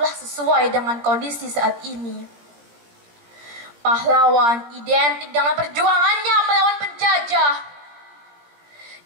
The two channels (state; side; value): late; left; 17 ms